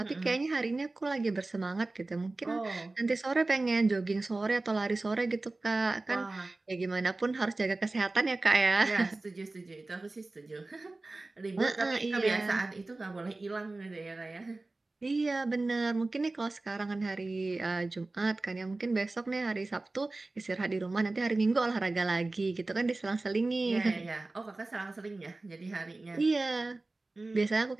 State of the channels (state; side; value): quieter; left; 3.2 dB